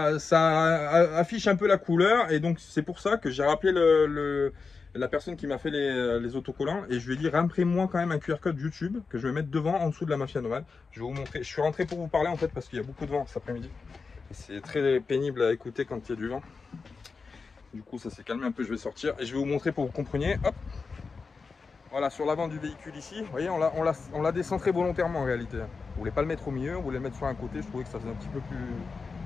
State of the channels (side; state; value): right; quieter; 4.7 dB